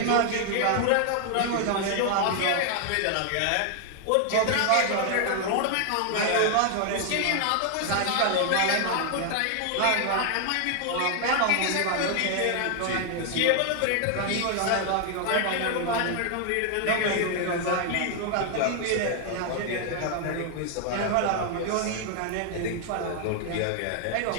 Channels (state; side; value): different; both; correlation 0.00